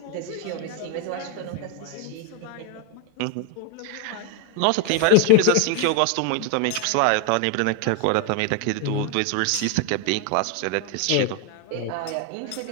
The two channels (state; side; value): different; both; correlation 0.01